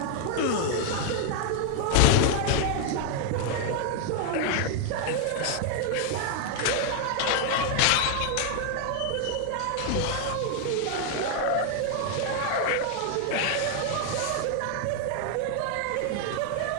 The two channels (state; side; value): different; both; correlation 0.00